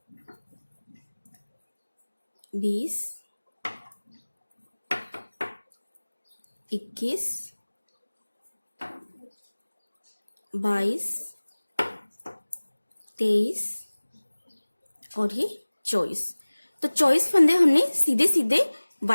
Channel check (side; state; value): both; inverted; correlation -1.00